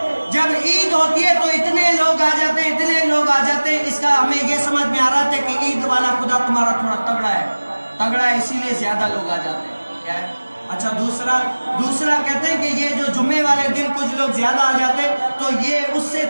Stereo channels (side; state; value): both; inverted; correlation -1.00